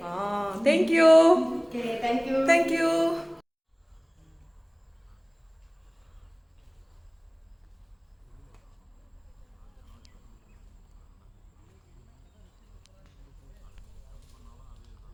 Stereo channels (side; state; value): both; identical; correlation 1.00